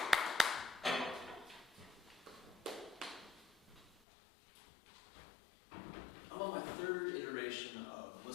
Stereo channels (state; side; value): drops out; right; at 4.0 s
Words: I'm on my third iteration of